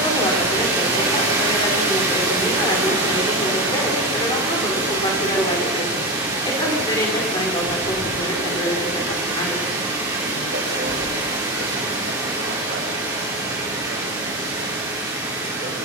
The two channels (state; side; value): normal; both; correlation 0.17